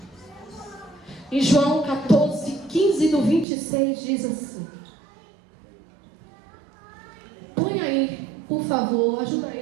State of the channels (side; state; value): left; drops out; at 3.5 s